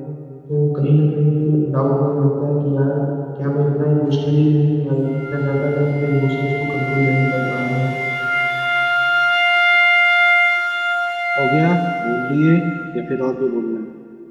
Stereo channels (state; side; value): identical; both; correlation 1.00